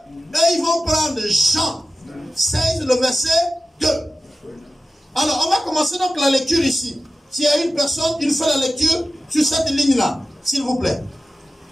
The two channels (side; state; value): both; normal; correlation 0.94